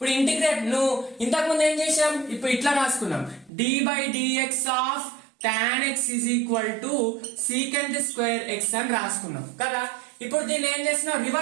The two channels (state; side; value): drops out; left; at 3.5 s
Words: integrate నువ్వు ఇంతకుముందు ఏం చేసాం, ఇప్పుడు ఇట్లా రాసుకున్నాం, d by dx of tan x is equal to secant square x అని రాసుకున్నాం కదా. ఇప్పుడు దీన్ని ఏం చేస్తున్నాం,